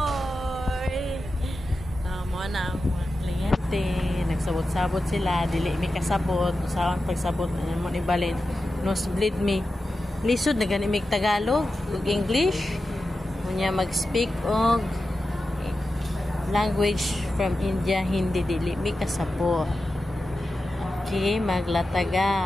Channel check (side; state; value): both; normal; correlation 0.92